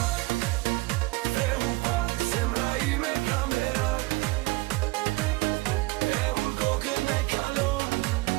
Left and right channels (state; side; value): quieter; left; 22.8 dB